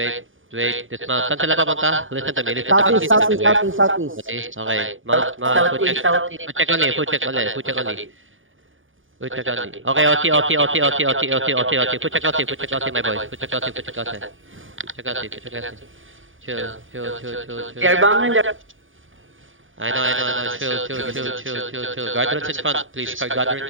Wait. Dismount. Saan sila papunta? Listen to me. Southeast. Okay. Mount. Food check only. Food check only. Okay, OT. Food check OT, my boy. Food check OT. Chill. They're bombing the... I know. Chill. Guardrails in front, please.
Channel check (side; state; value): left; late; 0.58 ms